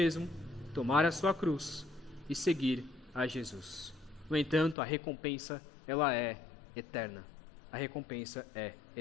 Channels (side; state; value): right; drops out; at 4.8 s